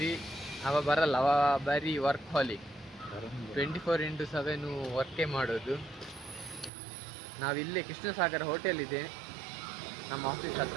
ಅವ ಬರಲ್ಲ, ಅವ ಬರೀ ವರ್ಕ್ ಹಾಲಿಕ್, 24x7 ವರ್ಕೇ ಮಾಡೋದು. ನಾವಿಲ್ಲೇ ಕೃಷ್ಣಸಾಗರ ಹೋಟೆಲ್ ಇದೆ ನಮ್ಮ ಆಫೀಸ್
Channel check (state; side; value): drops out; left; at 6.7 s